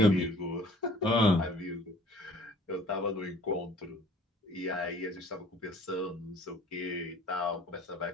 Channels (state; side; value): normal; both; correlation 0.52